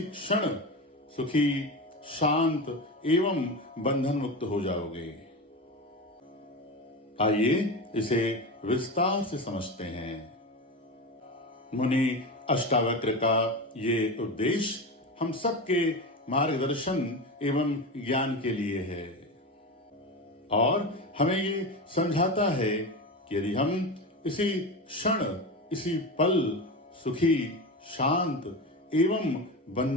क्षण सुखी, शांत एवं बंधन मुक्त हो जाओगे। आइए इसे विस्तार से समझते हैं। मुनि अष्टावक्र का ये उद्देश्य हम सबके मार्गदर्शन एवं ज्ञान के लिए है और हमें ये समझाता है कि यदि हम इसी क्षण, इसी पल सुखी, शांत एवं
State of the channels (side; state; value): both; normal; correlation 0.22